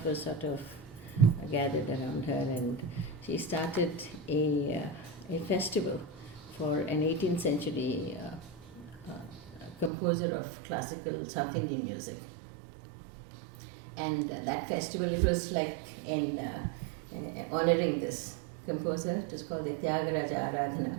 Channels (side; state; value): left; drops out; at 9.9 s